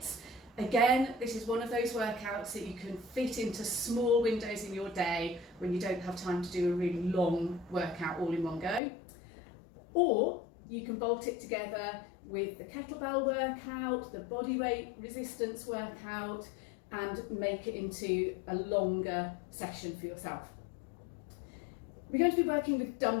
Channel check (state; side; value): drops out; right; at 8.8 s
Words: Again, this is one of those workouts that you can fit into small windows in your day when you don't have time to do a really long workout all in one go. Or you can bolt it together with the kettlebell workout, the bodyweight resistance workout, and make it into a longer session for yourself. We're going to be working with